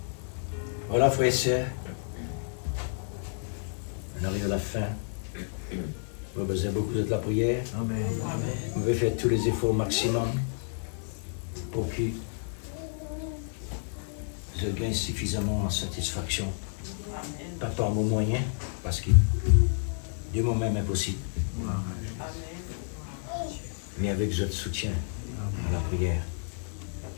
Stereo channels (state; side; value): silent; right; digital silence